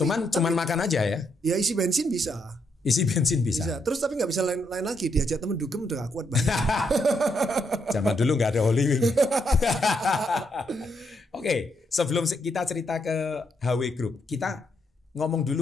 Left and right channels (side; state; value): both; normal; correlation 0.77